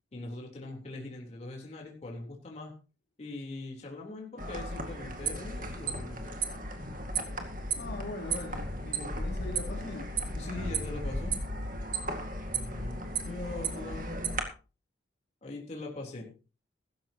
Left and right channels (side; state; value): both; normal; correlation 0.56